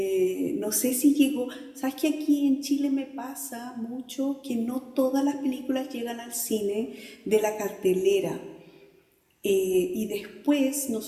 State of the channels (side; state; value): both; identical; correlation 1.00